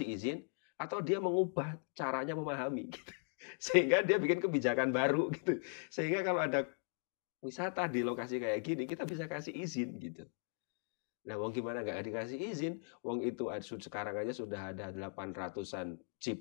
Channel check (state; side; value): silent; right; 52 dB below the other